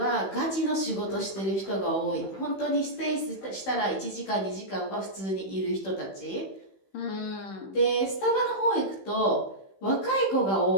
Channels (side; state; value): right; late; 15 ms